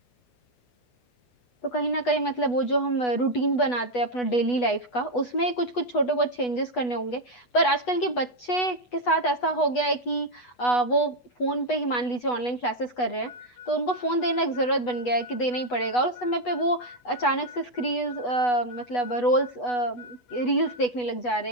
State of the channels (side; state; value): right; late; 8.1 ms